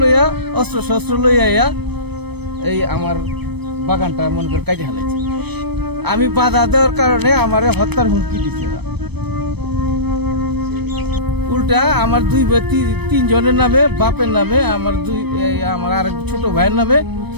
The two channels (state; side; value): late; left; 0.98 ms